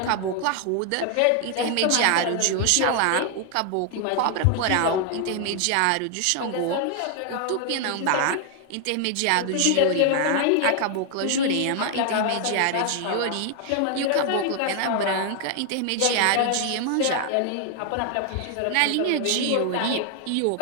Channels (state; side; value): different; both; correlation 0.00